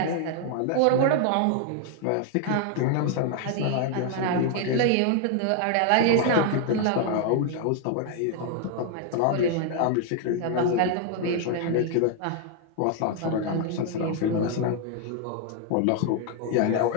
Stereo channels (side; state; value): both; different; correlation 0.00